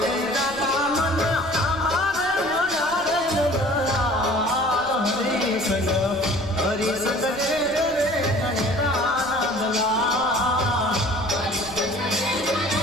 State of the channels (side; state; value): left; noise; rumble, 24 dB below the sound